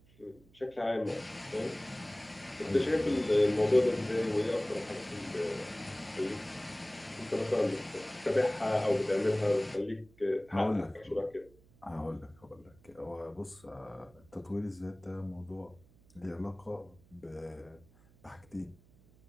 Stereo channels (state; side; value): noise; right; hum, 27 dB below the sound